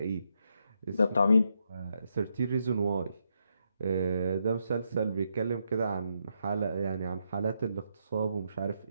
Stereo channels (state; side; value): inverted; both; correlation -0.80